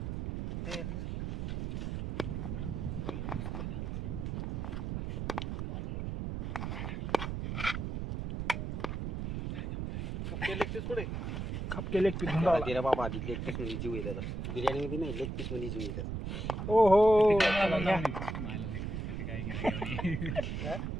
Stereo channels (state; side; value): noise; right; rumble, 4 dB below the sound